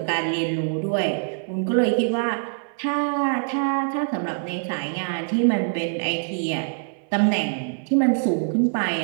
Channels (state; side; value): silent; left; 59 dB below the other